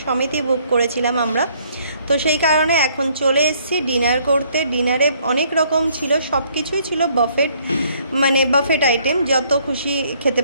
সমেতই বুক করেছিলাম আমরা, তো সেই কারণে এখন চলে এসেছি ডিনার করতে। ডিনারে অনেক রকম ছিল, সব কিছুই ছিল বাফেট, মানে বাফেট আইটেম, যত খুশি খেতে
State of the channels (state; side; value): inverted; both; correlation -0.65